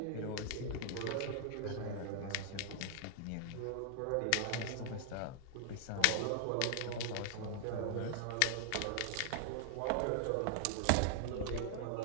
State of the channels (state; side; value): different; both; correlation 0.00